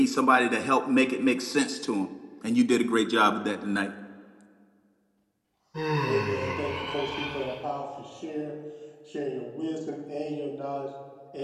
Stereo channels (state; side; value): identical; both; correlation 1.00